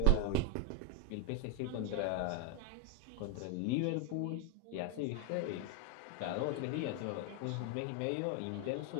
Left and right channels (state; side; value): different; both; correlation 0.02